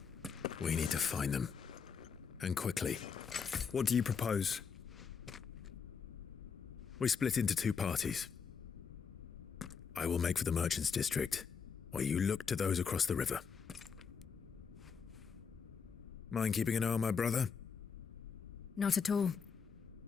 We need to find them. And quickly. What do you propose? We split into two parties. I will make for the Merchants District, while you look to those across the river. Mind keeping an eye on my brother? Not at all.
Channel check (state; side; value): quieter; right; 6.2 dB